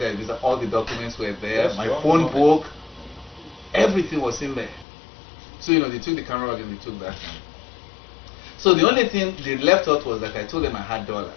All the documents were there. My phone book, everything was in there. So, they took the camera and they took that. So the only thing they left out was that I told them I had dollars.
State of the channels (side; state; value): right; drops out; at 4.9 s